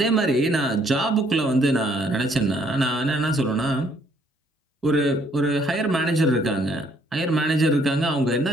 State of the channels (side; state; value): both; normal; correlation 0.66